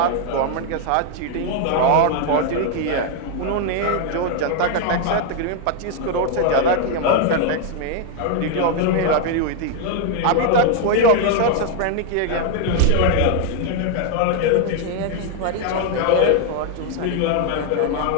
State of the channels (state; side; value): different; both; correlation 0.00